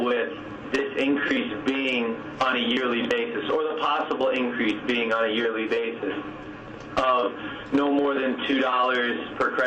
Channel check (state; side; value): identical; both; correlation 1.00